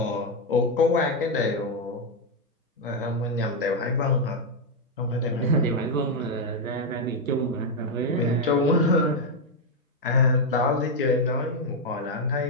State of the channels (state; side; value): normal; both; correlation 0.02